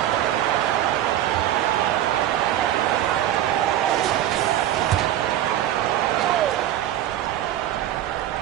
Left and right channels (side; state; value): left; quieter; 12.3 dB